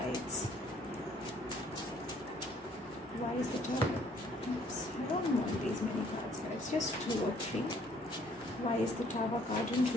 Why is the Tower? Oops, I don't want these many cards, guys. Just 2 or 3. Why is the Tower card in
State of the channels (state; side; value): normal; both; correlation 0.61